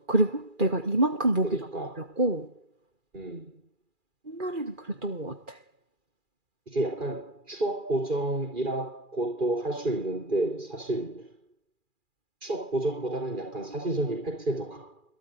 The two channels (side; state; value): left; late; 2.4 ms